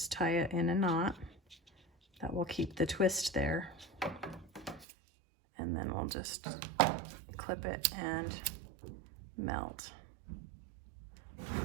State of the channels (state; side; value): drops out; left; at 4.9 s